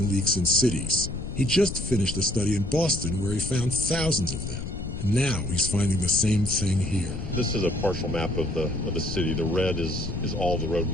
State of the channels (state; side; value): noise; left; rumble, 7 dB below the sound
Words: leaks in cities. He just finished a study in Boston where he found thousands of them. And now he's finding the same thing here. This is a partial map of the city. The red is all the road